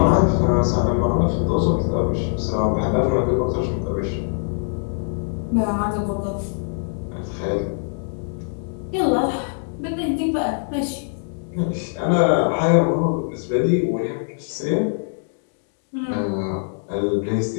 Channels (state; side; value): silent; right; digital silence